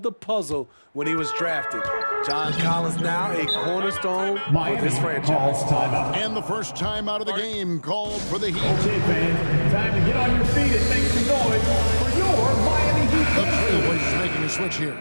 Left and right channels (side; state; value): both; inverted; correlation -1.00